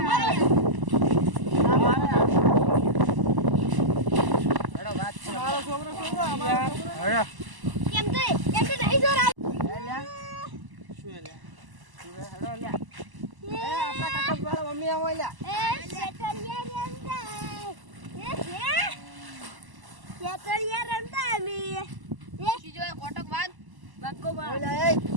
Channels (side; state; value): left; late; 1.0 ms